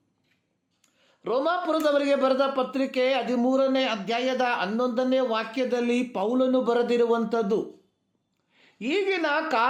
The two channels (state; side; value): identical; both; correlation 1.00